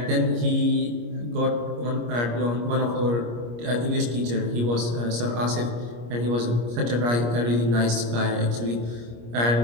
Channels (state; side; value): late; left; 25 ms